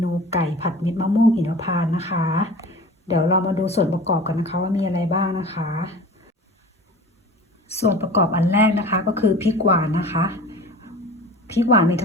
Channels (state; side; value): normal; both; correlation 0.39